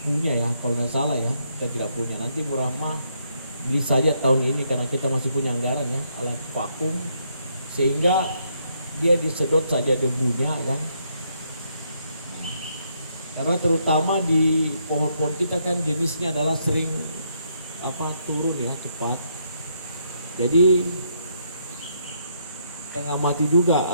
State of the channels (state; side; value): inverted; both; correlation -0.75